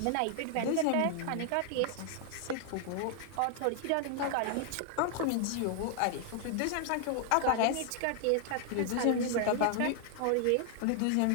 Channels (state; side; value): different; both; correlation 0.00